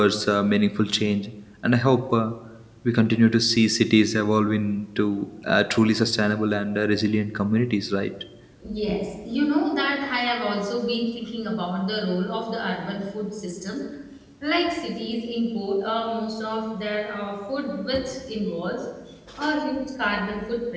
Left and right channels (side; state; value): both; identical; correlation 1.00